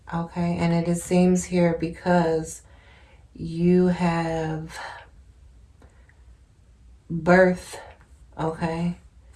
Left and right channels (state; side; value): identical; both; correlation 1.00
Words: Okay, and it seems here because you have birth, okay,